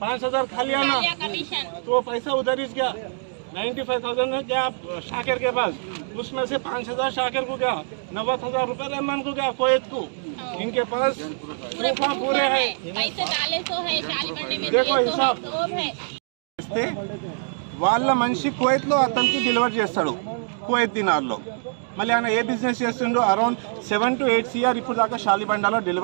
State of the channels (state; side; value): silent; left; digital silence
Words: 5,000 खा लिया ना, तो वो पैसा उधर ही गया. 95,000 है क्या शाकिर के पास, उसमें से 5,000 शाकिर को गया, 90,000 रुपए रहमान को गया कोयत को. इनके पास पूरे है, देखो हिसाब. వాళ్ళ మనిషి కువైత్లో అతనికి డెలివరీ చేస్తాడు కువైత్ దినార్లో. మళ్ళీ ఆయన ఏ బిజినెస్ చేస్తుండో అరౌండ్ 7 to 8 CR ఇప్పుడు దాకా షాలిబండాలో